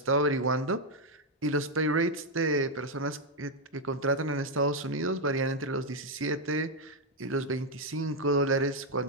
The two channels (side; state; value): both; normal; correlation 0.01